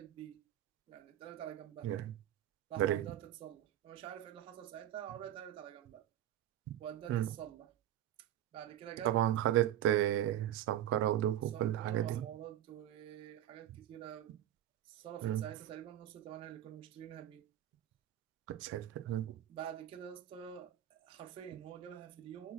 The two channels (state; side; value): quieter; left; 12.0 dB